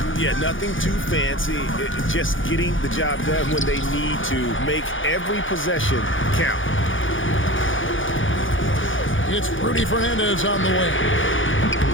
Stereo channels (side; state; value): right; late; 0.57 ms